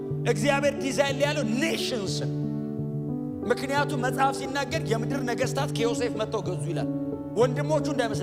እግዚአብሔር ዲዛይን ላይ ያለው ኔሽንስን። ምክንያቱም መጽሐፍ ሲናገር የምድር ነገስታት ከዮሴፍ መጥተው ገዙ ይላል። ወንድሞቹ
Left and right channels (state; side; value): identical; both; correlation 1.00